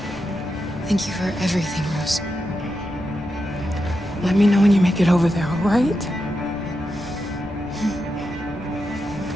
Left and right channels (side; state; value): both; normal; correlation 0.87